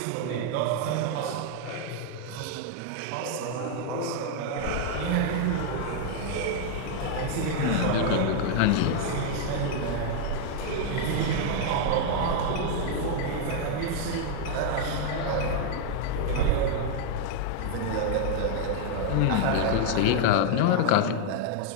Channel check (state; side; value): different; both; correlation 0.00